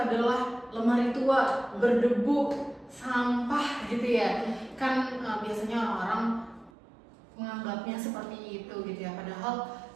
lemari tua, berdebu, sampah gitu ya. Kan biasanya orang menganggapnya seperti itu gitu ya, padahal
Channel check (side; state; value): left; drops out; at 6.7 s